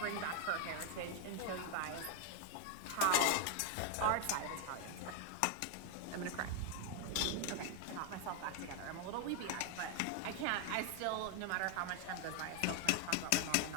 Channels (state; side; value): different; both; correlation 0.00